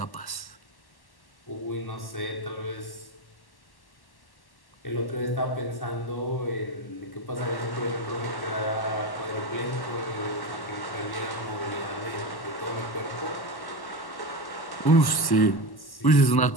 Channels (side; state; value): right; late; 1.1 ms